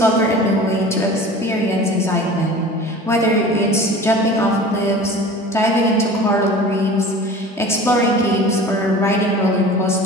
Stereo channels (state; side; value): normal; both; correlation 0.40